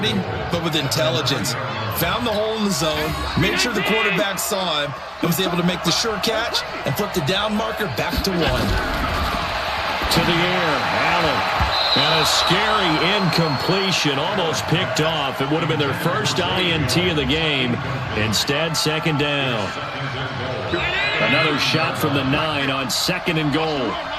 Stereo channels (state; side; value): identical; both; correlation 1.00